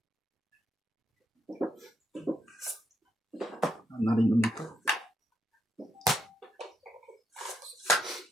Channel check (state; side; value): normal; both; correlation 0.79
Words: Narinig mo ito.